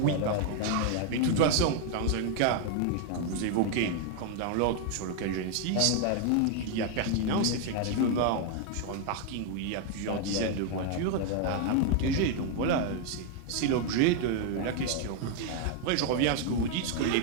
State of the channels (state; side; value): different; both; correlation 0.00